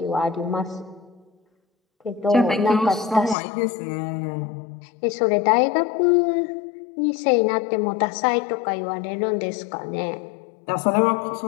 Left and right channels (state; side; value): drops out; right; at 3.4 s